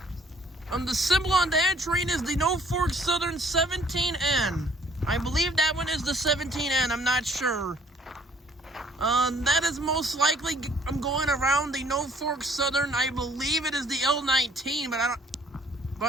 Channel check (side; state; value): both; normal; correlation 0.59